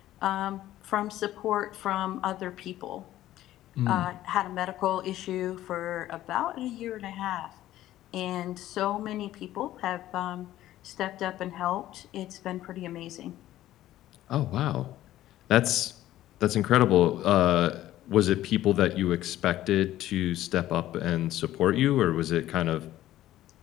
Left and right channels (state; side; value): quieter; right; 14.0 dB